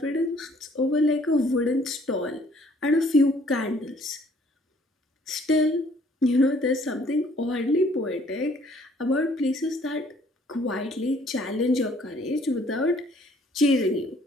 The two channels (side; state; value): both; normal; correlation 0.60